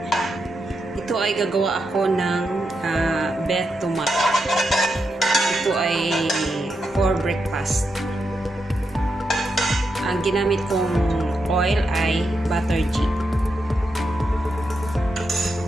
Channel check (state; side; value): normal; both; correlation 0.85